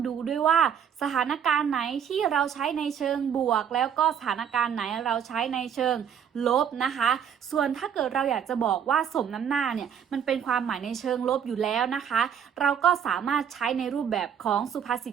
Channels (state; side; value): quieter; left; 8.2 dB